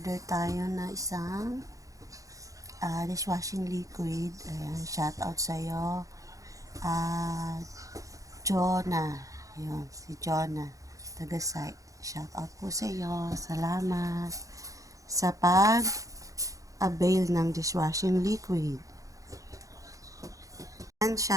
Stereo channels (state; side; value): late; left; 0.16 ms